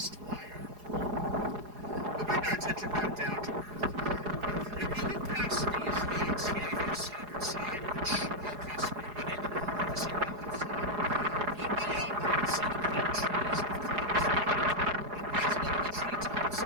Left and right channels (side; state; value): left; late; 4.8 ms